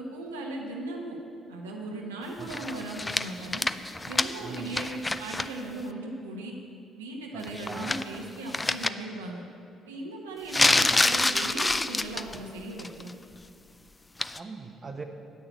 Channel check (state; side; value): normal; both; correlation 0.88